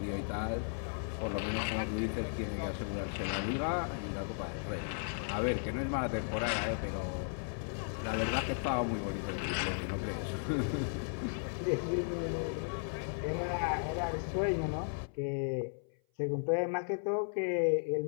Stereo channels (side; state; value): right; silent; 54 dB below the other